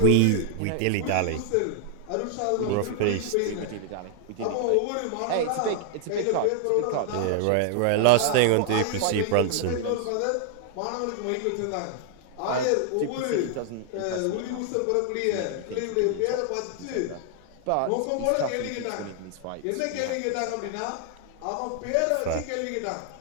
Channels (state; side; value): different; both; correlation 0.00